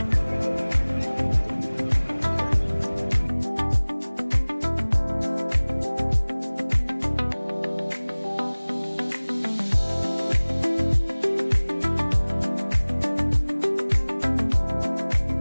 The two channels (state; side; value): inverted; both; correlation -1.00